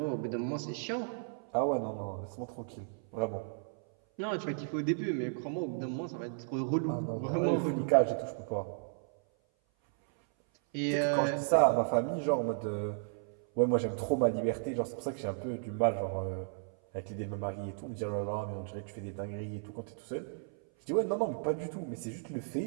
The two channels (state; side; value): silent; left; 55 dB below the other